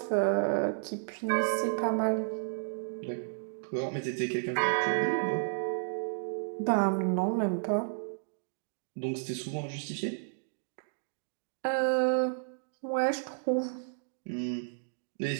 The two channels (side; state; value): left; silent; digital silence